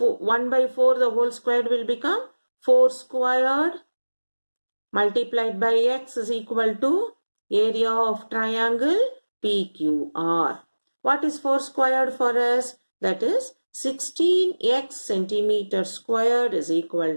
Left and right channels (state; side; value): inverted; both; correlation -1.00